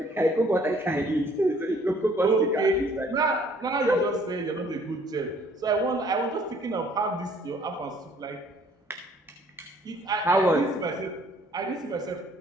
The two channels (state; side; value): normal; both; correlation 0.60